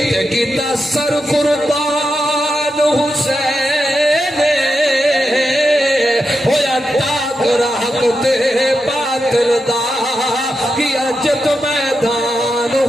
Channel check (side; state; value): both; normal; correlation 0.87